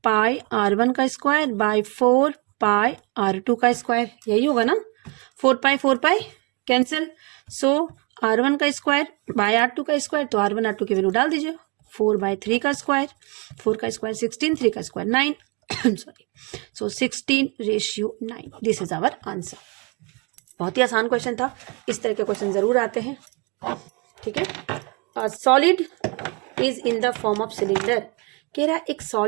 pi r1 का स्क्वायर बाय 4 पाई r2 का स्क्वायर, यही होगा ना। 4 पाई कैंसिल, सो r1 का स्क्वायर बाय r2 का स्क्वायर, तो r1 r2 की वैल्यू डाल दीजिए। 4/3 का स्क्वायर, 4 का स्क्वायर 16, 3 का square 9 sorry, so 16:9। This is our answer. बहुत ही आसान क्वेश्चन था, इस तरह के क्वेश्चन जरूर आते हैं। ठीक है, solid is in the form of cylinder, कह रहा है एक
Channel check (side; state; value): left; quieter; 32.0 dB